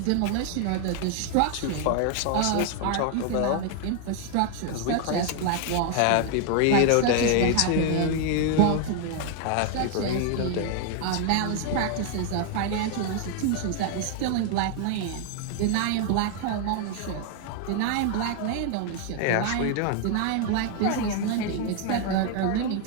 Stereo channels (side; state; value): both; different; correlation 0.00